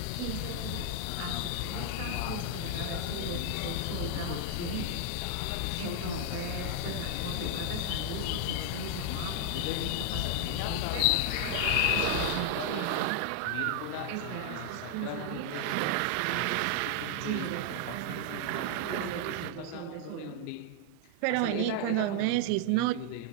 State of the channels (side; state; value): both; different; correlation 0.00